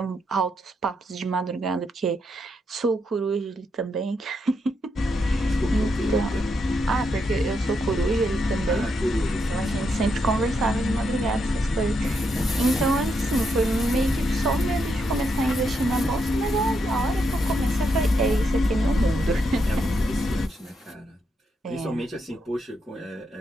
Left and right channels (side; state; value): both; normal; correlation 0.80